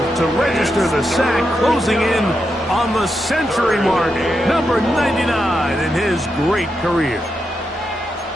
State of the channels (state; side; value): normal; both; correlation 0.85